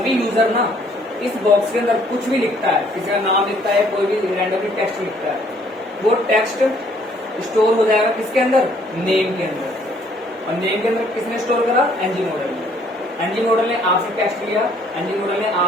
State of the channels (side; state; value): both; normal; correlation 0.63